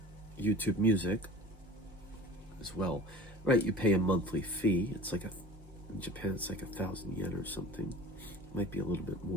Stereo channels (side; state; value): both; normal; correlation 0.41